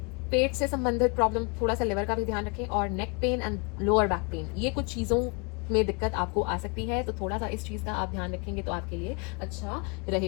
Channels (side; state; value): right; quieter; 32.8 dB